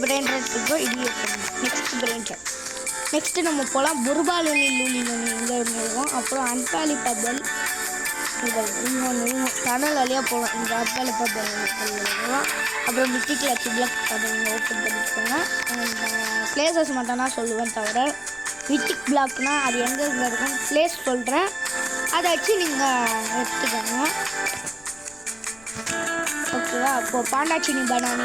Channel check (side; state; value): left; noise; rumble, 27 dB below the sound